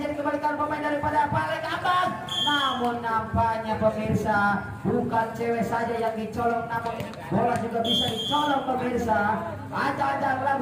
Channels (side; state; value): both; identical; correlation 1.00